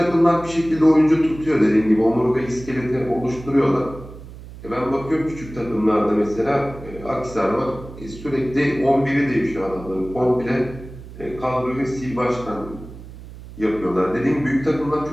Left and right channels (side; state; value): right; noise; hum, 15 dB below the sound